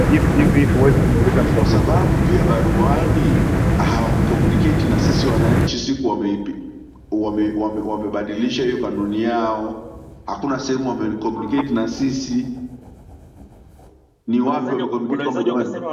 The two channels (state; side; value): identical; both; correlation 1.00